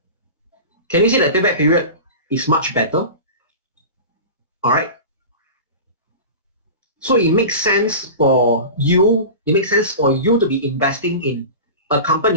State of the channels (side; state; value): both; inverted; correlation -0.31